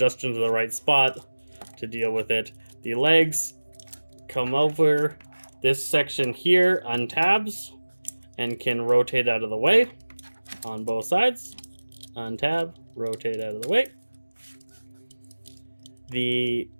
into the right spot to deal with it. The legs come over. This section here untabs and can rotate out of the way on both sides. Untab, rotate out of the way. The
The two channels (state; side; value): inverted; both; correlation -1.00